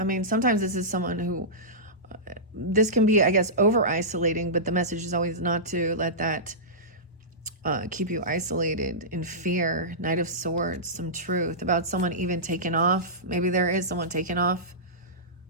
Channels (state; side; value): normal; both; correlation -0.17